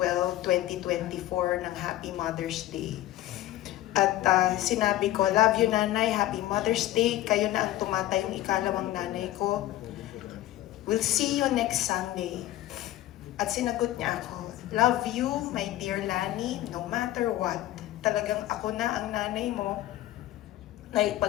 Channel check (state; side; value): quieter; right; 14.8 dB